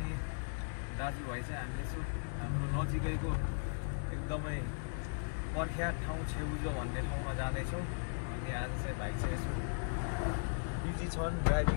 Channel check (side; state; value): right; silent; digital silence